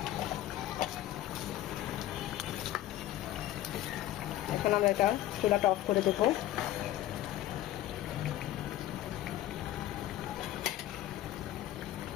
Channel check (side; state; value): right; quieter; 13.7 dB